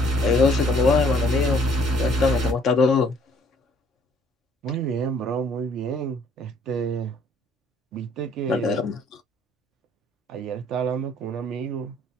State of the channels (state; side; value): normal; both; correlation 0.61